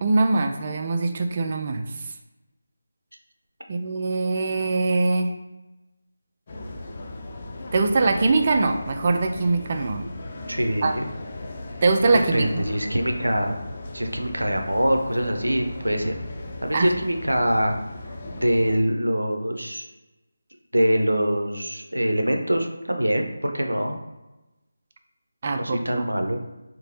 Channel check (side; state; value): both; inverted; correlation -0.94